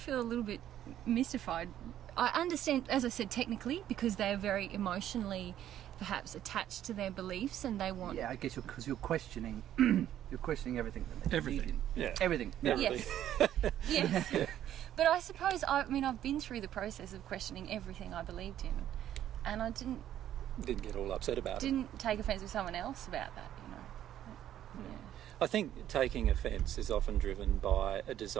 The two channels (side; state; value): left; quieter; 11.5 dB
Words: a little bit mystified. I understand, as I said, technically, because they are very emotionally perhaps attached to their beliefs, and they want... Yeah, I guess because you're questioning you're questioning everything that they believe in. Yeah. Everything. Yes. Yes. But I suppose, I've been through the process of questioning everything I believed in, and I didn't get all upset about it. Didn't take offence with someone else about that, you know. Yeah. I think taking offence is often driven by a